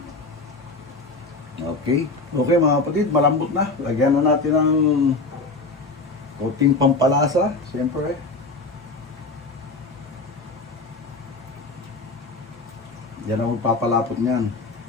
Okay. Okay mga kapatid, malambot na. Lagyan na natin ng konting pampalasa. Siyempre. Yan ang magpapalapot niyan.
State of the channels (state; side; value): quieter; right; 3.5 dB